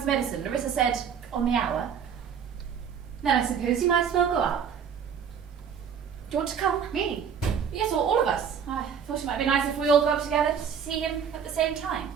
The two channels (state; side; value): quieter; left; 7.4 dB